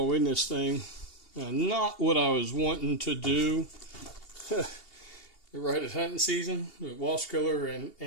in this thing. Not what I was wanting to do right at hunting season, with wasp killer and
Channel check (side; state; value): right; late; 2.8 ms